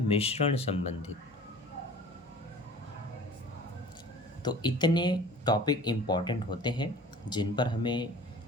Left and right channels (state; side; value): normal; both; correlation 0.44